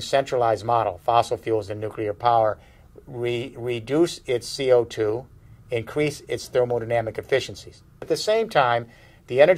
centralized model, fossil fuels and nuclear power, reduce its CO2, increase its thermodynamic efficiencies. At the same time, the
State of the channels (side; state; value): both; identical; correlation 1.00